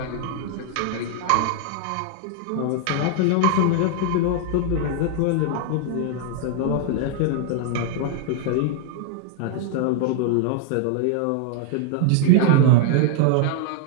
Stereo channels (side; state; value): both; different; correlation 0.00